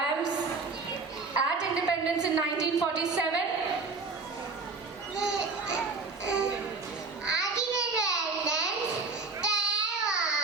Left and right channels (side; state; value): left; quieter; 4.2 dB